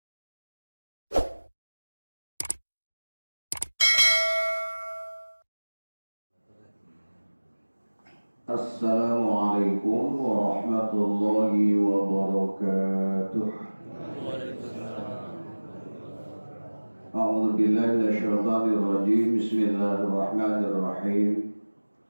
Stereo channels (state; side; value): inverted; both; correlation -1.00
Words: Assalamualaikum warahmatullahi wabarakatuh. A'udzu billahi minasyaitonir rajim. Bismillahirrahmanirrahim.